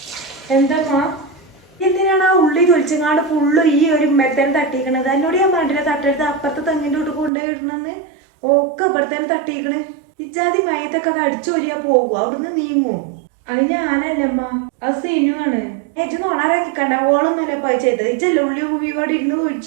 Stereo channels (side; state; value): left; drops out; at 7.3 s